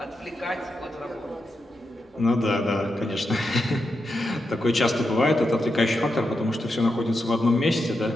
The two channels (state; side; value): normal; both; correlation 0.86